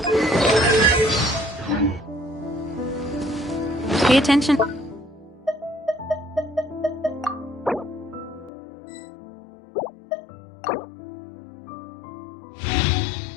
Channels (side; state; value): right; drops out; at 8.5 s